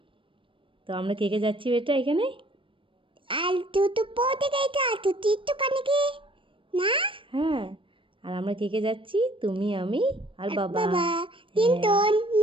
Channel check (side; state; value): left; late; 0.25 ms